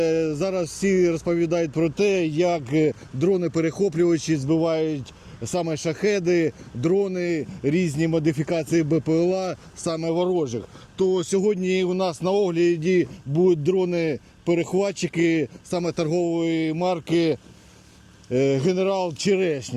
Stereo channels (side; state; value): both; identical; correlation 1.00